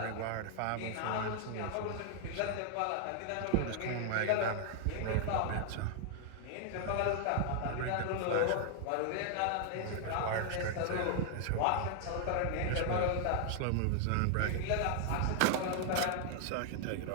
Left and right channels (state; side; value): different; both; correlation 0.00